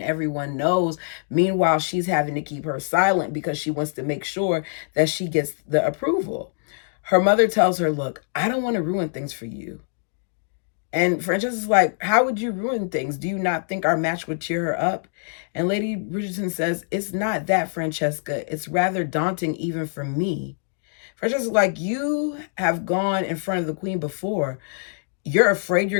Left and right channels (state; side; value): silent; right; digital silence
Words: everyone knows. Meanwhile, she's having to keep her silent because she wants to make sure that she gets the approval. Her mother tells her, look, I don't want to ruin things for you. And Francesca's like, how would you ruin things? Do you not think our match would cheer her up? And Lady Bridgerton says, it's not that, Francesca. It's rather daunting even for me. Francesca's like, you have gone in front of the queen before. You're afraid